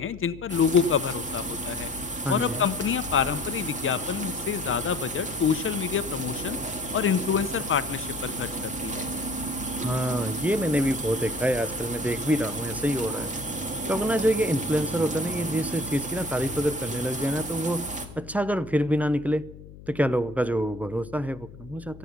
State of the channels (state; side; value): noise; left; hum, 18 dB below the sound